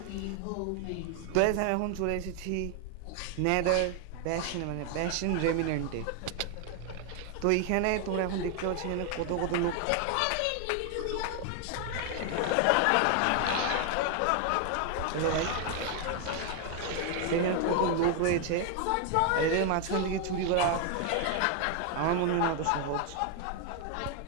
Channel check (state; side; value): different; both; correlation 0.00